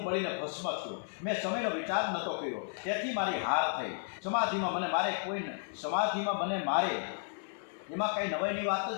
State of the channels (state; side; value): silent; right; 56 dB below the other